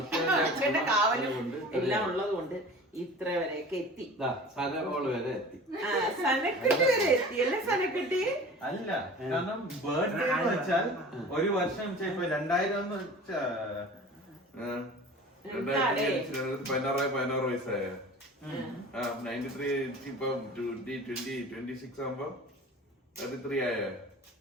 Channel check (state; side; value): normal; both; correlation 0.40